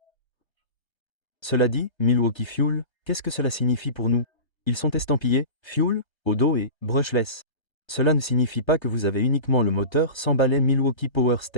Cela dit, Milwaukee Fuel, qu'est-ce que cela signifie pour nous? Ils sont estampillés Fuel au dos et brushless. Cela ne signifie pas que vous avez uniquement le moteur sans balai Milwaukee Power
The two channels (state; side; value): late; right; 1.3 ms